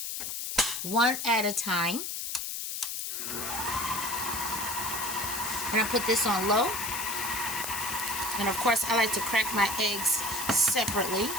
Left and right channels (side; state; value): left; noise; hiss, 4 dB below the sound